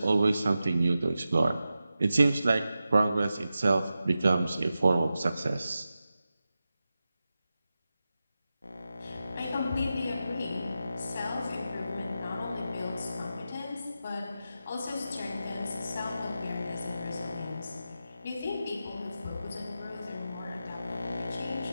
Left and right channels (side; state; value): both; inverted; correlation -0.92